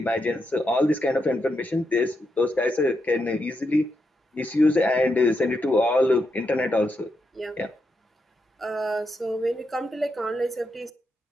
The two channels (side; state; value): both; normal; correlation 0.83